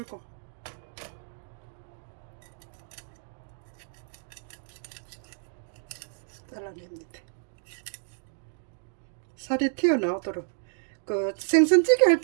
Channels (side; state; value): left; silent; digital silence